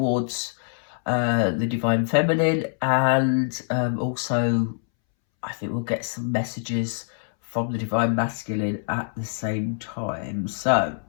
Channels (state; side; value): silent; right; 62 dB below the other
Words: the divine feminine, and also I think we'll get some messages from the divine masculine at the same time. So